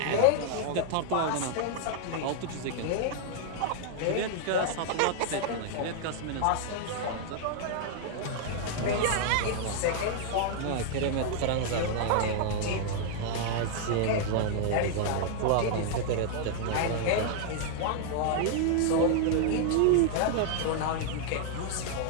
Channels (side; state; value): both; different; correlation 0.00